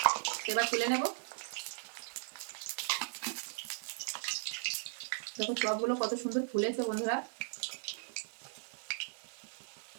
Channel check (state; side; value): silent; left; digital silence